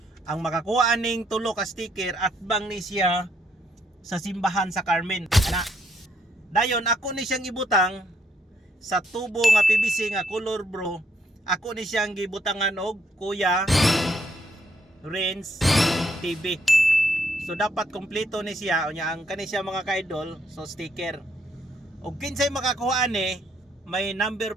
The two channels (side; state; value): both; normal; correlation 0.71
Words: ang makakuha ning tulo ka sticker at bang ni siya sa simbahan sa Carmen. Ana. Dayon ako ni siyang ibutang sa tubo nga PVC nga color bro. Ako ni siyang gibutangan og Kuya Renz TV. So dapat kompleto ni siya unya ang kani siya mga ka-idol, so sticker. Og kinsay makakuha ni, may number